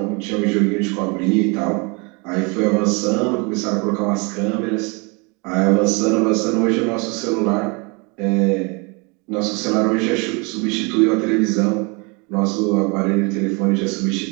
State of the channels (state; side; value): quieter; left; 30.5 dB